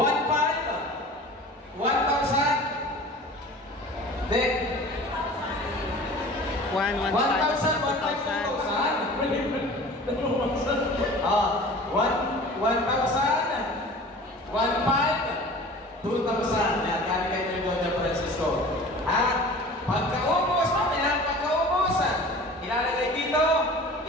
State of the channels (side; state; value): both; normal; correlation 0.41